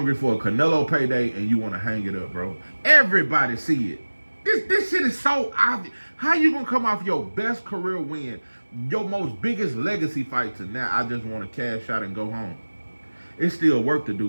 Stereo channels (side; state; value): both; inverted; correlation -1.00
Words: for a Canelo payday and you want to hang it up, bro. Everybody see it. This shit is so obvious. How you gonna come off your best career win, your most biggest legacy fight to now, I just want to cash out and go home? It's still work to